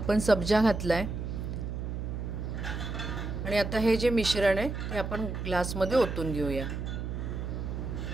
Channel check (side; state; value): right; noise; hum, 4 dB below the sound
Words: सब्जा घातलाय आणि आता हे जे मिश्रण आहे ते आपण ग्लासमध्ये ओतून घेऊया.